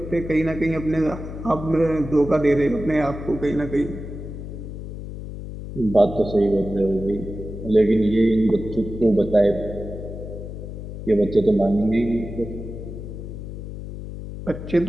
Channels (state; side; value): noise; left; hum, 9 dB below the sound